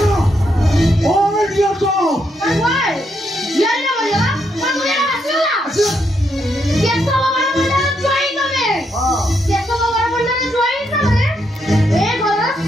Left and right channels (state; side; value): normal; both; correlation 0.78